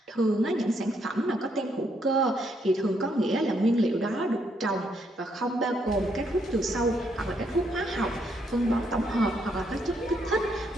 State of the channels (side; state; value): both; normal; correlation 0.74